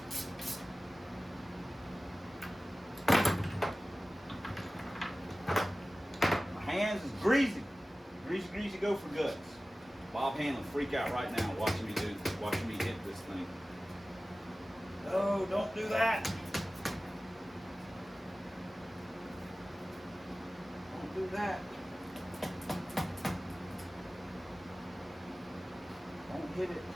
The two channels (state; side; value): normal; both; correlation 0.97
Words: My hands is greasy. Greasy, go for guts. Bob Hanlon freak out right now watching me hit this thing. No, don't do that. Do that. Don't hit it.